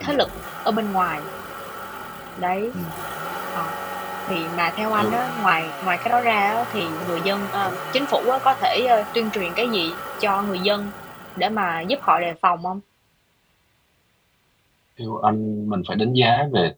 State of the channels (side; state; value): both; identical; correlation 1.00